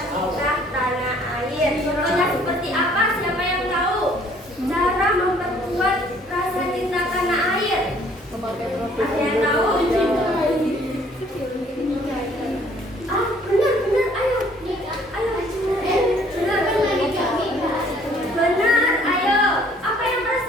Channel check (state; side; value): normal; both; correlation 0.59